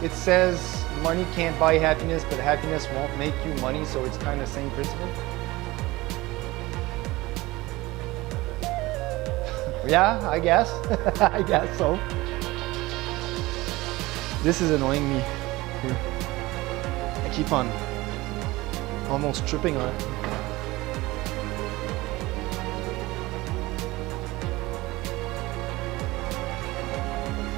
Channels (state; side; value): quieter; left; 20.1 dB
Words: says money can't buy happiness, but happiness won't make you money, so it's kind of the same principle? Yeah, I guess. I guess so. This is annoying me here. I keep on almost tripping on it.